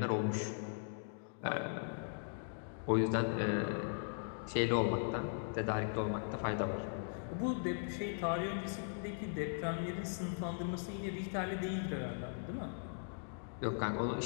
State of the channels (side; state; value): right; silent; digital silence